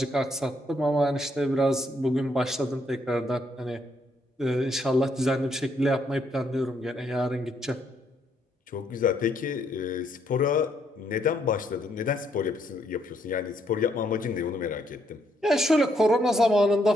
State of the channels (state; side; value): normal; both; correlation 0.73